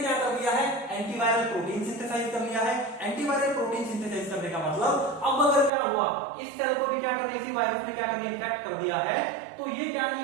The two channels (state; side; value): drops out; left; at 5.7 s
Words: कर दिया है, एंटीवायरल प्रोटीन सिंथेसाइज कर लिया है। एंटीवायरल प्रोटीन सिंथेसाइज करने का मतलब, अब अगर क्या हुआ, इस सेल को भी क्या कर दिया, इसी वायरस ने क्या कर दिया, इन्फेक्ट कर दिया है, तो ये क्या